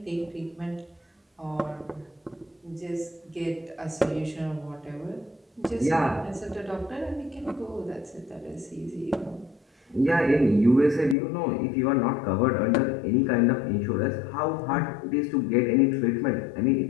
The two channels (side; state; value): right; drops out; at 11.2 s